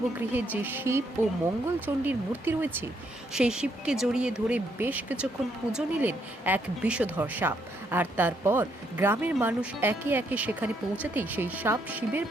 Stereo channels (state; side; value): normal; both; correlation 0.73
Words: যে শিব ও মঙ্গলচণ্ডীর মূর্তি রয়েছে, সেই শিবকে জড়িয়ে ধরে বেশ কিছুক্ষণ পুজো নিলেন এক বিষধর সাপ। আর তারপর গ্রামের মানুষ একে একে সেখানে পৌঁছাতেই সেই সাপ শিবের